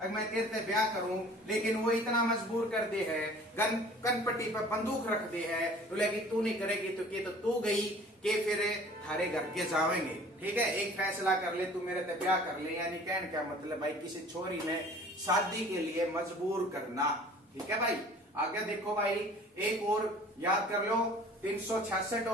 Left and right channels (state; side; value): normal; both; correlation 0.48